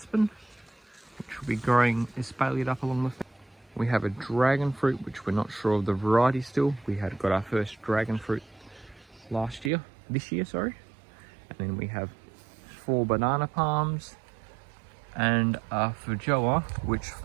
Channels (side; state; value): left; drops out; at 9.7 s